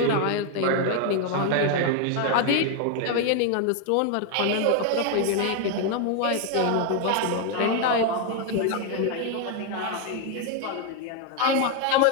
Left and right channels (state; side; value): different; both; correlation 0.01